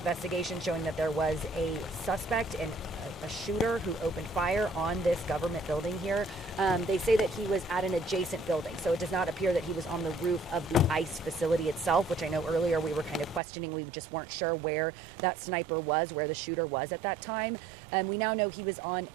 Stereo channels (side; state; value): left; drops out; at 13.4 s